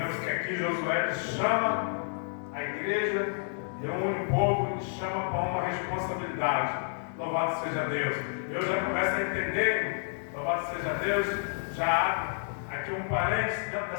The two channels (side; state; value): right; silent; digital silence